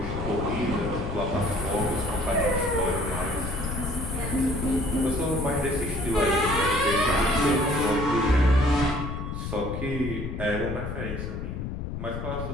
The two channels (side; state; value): left; noise; rumble, 5 dB below the sound